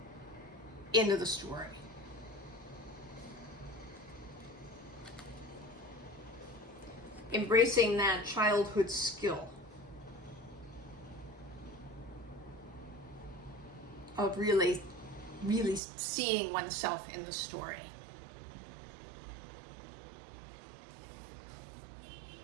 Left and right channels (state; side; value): drops out; left; at 15.8 s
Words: into the story. Embracing that childhood skill of really seeing oneself in the story.